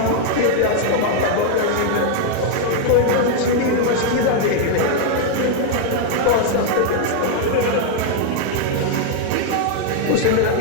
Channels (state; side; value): different; both; correlation 0.00